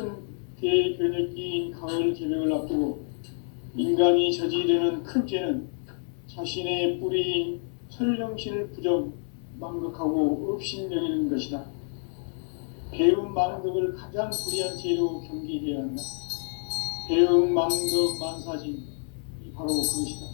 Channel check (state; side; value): silent; right; 56 dB below the other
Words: 대변혁기인 가을 개벽을 앞두고 인간이 저지르는 큰 죄는 자신의 뿌리인 설령신을 부정, 망극하고 업신여기는 것이다. 배움 망덕을 가장 불의한 죄로 경계해야 한다. 배움 망덕 만사진, 이 바로 그것이다.